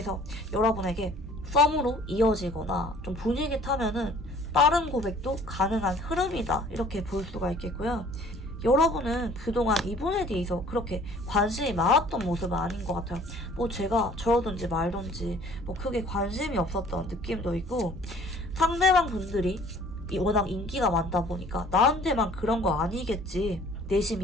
여러분에게 썸으로 이어지거나 좀 분위기 타면은 빠른 고백도 가능한 흐름이다. 이렇게 볼 수가 있겠고요. 여러분은 그동안 이분에 대해서 그렇게 관심이 많았던 모습은 아닌 것 같아요. 뭐 제가 저러든지 말든지 뭐 크게 관심이 없었던 느낌도 있고 상대방 분들이 워낙 인기가 많다 보니까 나한테만 그런 거 아니겠지.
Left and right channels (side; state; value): both; normal; correlation 0.54